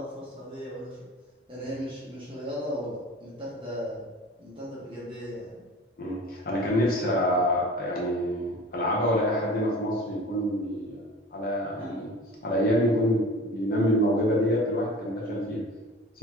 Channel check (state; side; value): normal; both; correlation 0.40